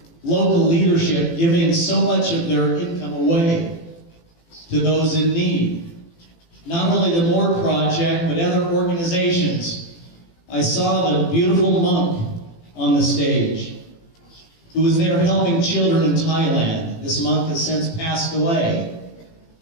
local leadership, giving so much of their income away to those in need. Not only the Moore Project, but other organizations. I saw the beautiful monk on the stage who was there helping children in Thailand. This monk has since passed away.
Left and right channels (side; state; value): right; late; 18 ms